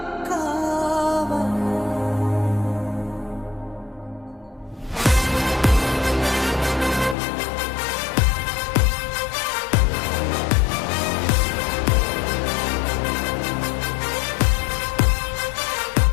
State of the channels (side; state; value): right; drops out; at 7.2 s